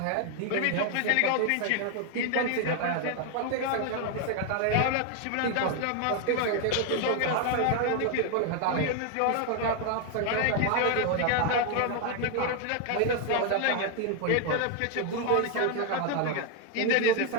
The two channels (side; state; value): both; different; correlation 0.01